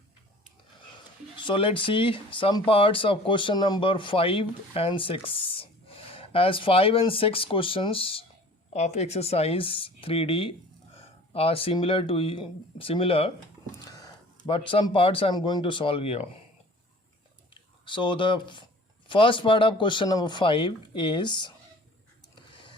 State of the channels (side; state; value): both; normal; correlation 0.47